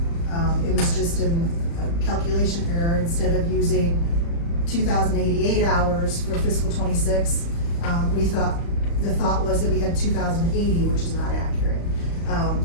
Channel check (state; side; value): late; right; 35 ms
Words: It was just a calculation error. Instead of using 2,088 hours for fiscal '26, the thought was that we had 2,080, which is not accurate.